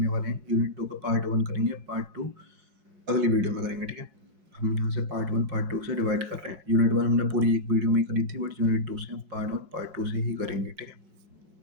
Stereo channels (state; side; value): late; left; 4.6 ms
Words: वाले हैं। यूनिट 2 का पार्ट 1 करेंगे, पार्ट 2 अगली वीडियो में करेंगे, ठीक है? हम यहाँ से पार्ट 1 पार्ट 2 से डिवाइड कर रहे हैं। यूनिट 1 हमने पूरी एक वीडियो में ही करी थी, बट यूनिट 2 से हम पार्ट 1 पार्ट 2 से ही करेंगे, ठीक है?